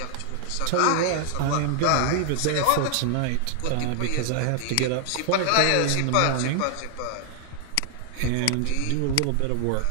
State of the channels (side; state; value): both; different; correlation 0.00